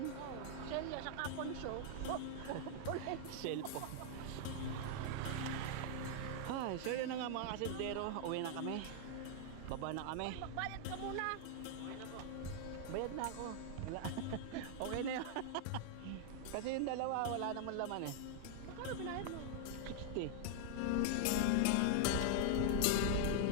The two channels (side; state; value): both; different; correlation -0.01